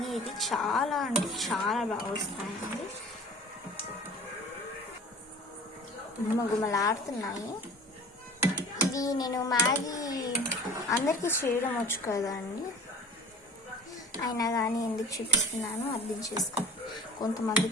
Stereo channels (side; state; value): both; normal; correlation 0.43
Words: ఇది చాలా అంటే చాలా బాగా వస్తాయండి. గుమగుమలాడుతున్నాయి. ఇది నేను మ్యాగీ అందరికీ చేయడం వచ్చు కదండి, అయినా కానీ ఎందుకు చూపిస్తున్నాను అర్థం చేసుకో.